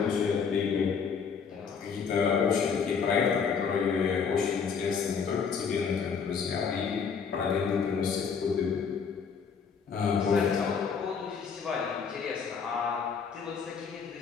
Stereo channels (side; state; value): right; quieter; 6.2 dB